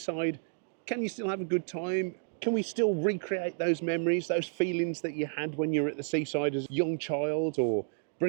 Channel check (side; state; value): left; silent; digital silence